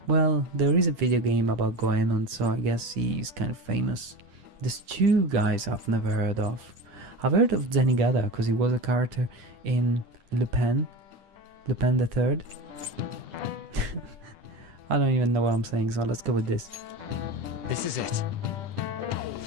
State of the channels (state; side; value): late; left; 10 ms